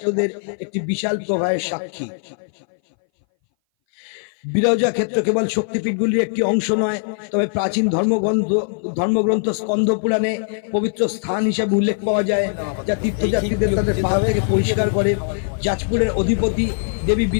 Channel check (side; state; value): right; silent; 60 dB below the other